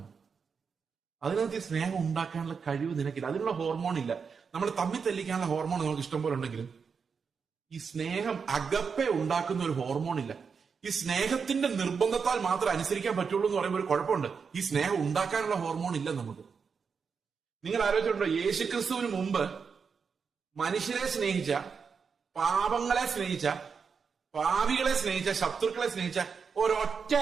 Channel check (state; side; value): quieter; left; 5.8 dB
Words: അതിനകത്ത് ഈ സ്നേഹം ഉണ്ടാക്കാനുള്ള കഴിവ് നിനക്കില്ല. അതിനുള്ള ഹോർമോൺ ഇല്ല. നമ്മൾ തമ്മിൽ തെല്ലിക്കാനുള്ള ഹോർമോൺ നമുക്ക് ഇഷ്ടം പോലെ ഉണ്ടെങ്കിലും ഈ സ്നേഹം അകപ്പെ ഉണ്ടാക്കുന്ന ഒരു ഹോർമോൺ ഇല്ല. ഈ സ്നേഹത്തിന്റെ നിർബന്ധത്താൽ മാത്രം അനുസരിക്കാൻ പറ്റുള്ളൂ എന്ന് പറയുമ്പോൾ ഒരു കുഴപ്പമുണ്ട്. ഈ സ്നേഹം ഉണ്ടാക്കാനുള്ള ഹോർമോൺ ഇല്ല നമുക്ക്. നിങ്ങൾ ആലോചിച്ചിട്ടുണ്ടോ, യേശുക്രിസ്തുവിന് മുമ്പ് മനുഷ്യരെ സ്നേഹിച്ച, പാപങ്ങളെ സ്നേഹിച്ച, പാപികളെ സ്നേഹിച്ച, ശത്രുക്കളെ സ്നേഹിച്ച ഒരൊറ്റ